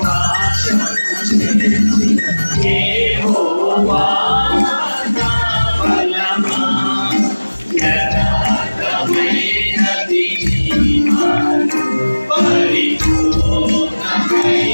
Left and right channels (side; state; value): both; inverted; correlation -1.00